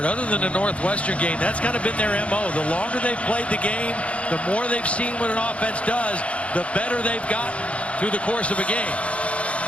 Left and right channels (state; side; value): late; right; 0.062 ms